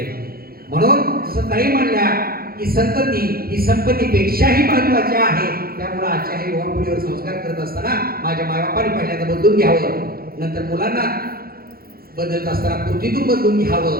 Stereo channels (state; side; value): late; left; 0.44 ms